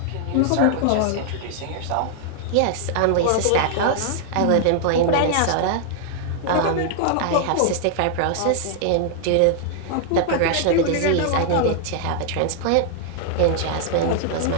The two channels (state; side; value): different; both; correlation 0.00